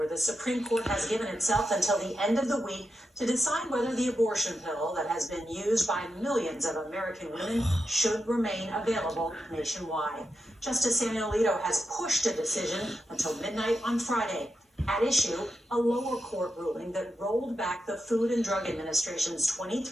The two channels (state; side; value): normal; both; correlation 0.87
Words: the Supreme Court has given itself until the end of the week to decide whether the abortion pill that has been used by millions of American women should remain available nationwide. Justice Samuel Alito has pushed a decision until midnight on Friday. At issue, a lower court ruling that rolled back the Food and Drug Administration's